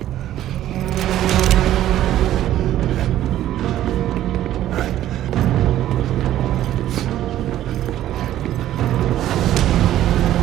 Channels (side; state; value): left; quieter; 12.9 dB